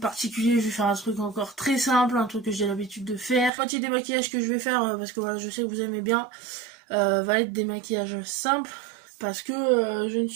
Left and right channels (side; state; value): left; drops out; at 3.5 s